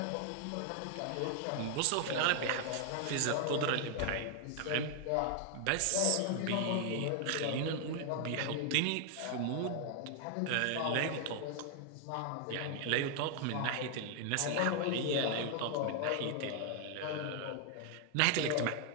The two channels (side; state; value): both; different; correlation 0.00